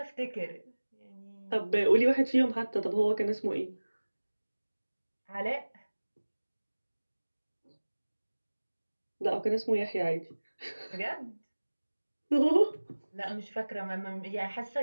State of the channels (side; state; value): both; inverted; correlation -1.00